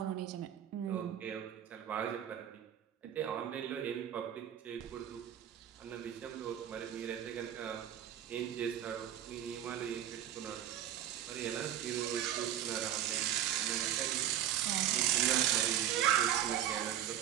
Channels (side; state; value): left; quieter; 10.8 dB